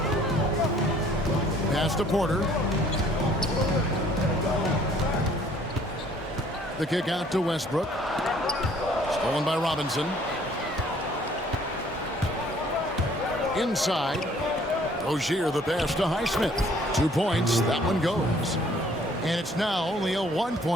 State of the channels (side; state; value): both; normal; correlation 0.59